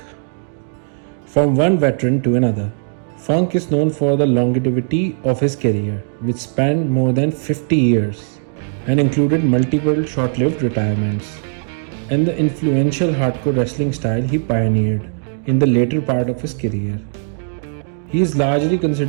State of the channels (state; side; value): silent; left; 67 dB below the other